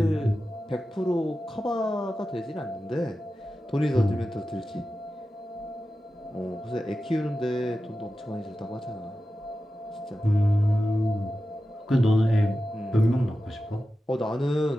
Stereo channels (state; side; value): normal; both; correlation 0.93